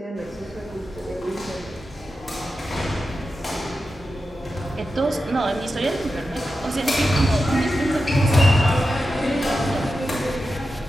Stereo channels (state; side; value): normal; both; correlation 0.91